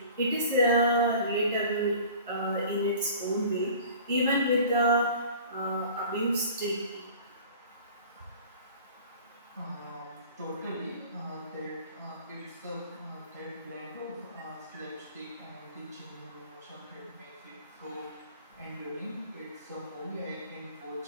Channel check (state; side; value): inverted; both; correlation -0.44